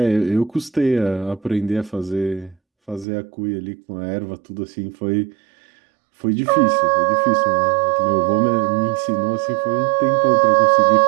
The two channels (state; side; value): drops out; left; at 3.1 s